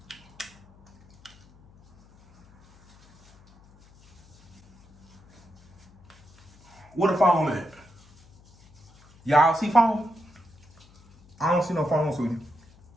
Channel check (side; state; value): left; noise; hum, 28 dB below the sound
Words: What a foam at? Y'all see foam? I don't see no foam, sweetie.